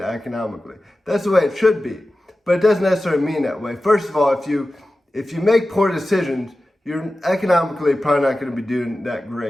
economically. That's the way it should be, but it doesn't necessarily mean that way. First of all, if you make poor decisions, you're economically probably not going to be doing that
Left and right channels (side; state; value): both; normal; correlation 0.95